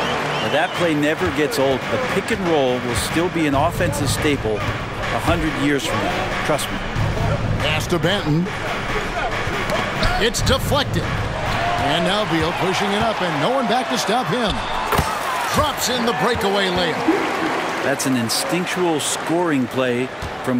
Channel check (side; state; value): both; identical; correlation 1.00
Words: that play never gets old. The pick and roll will still be an offensive staple 100 years from now. Trust me. Pass to Banton. It's deflected. And now Beal pushing it up, and no one back to stop him. Drops in the breakaway layup. That's an instinctual scoring play